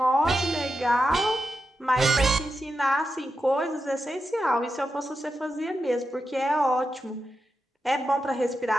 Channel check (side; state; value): both; normal; correlation 0.88